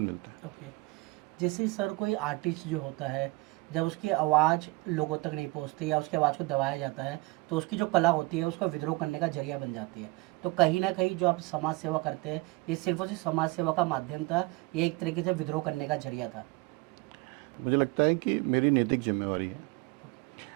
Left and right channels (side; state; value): left; quieter; 24.3 dB